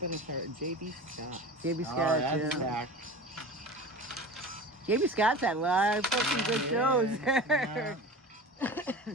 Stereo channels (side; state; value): both; normal; correlation 0.34